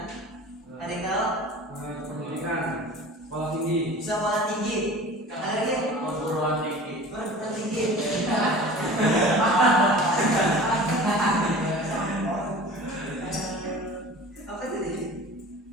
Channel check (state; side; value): normal; both; correlation 0.40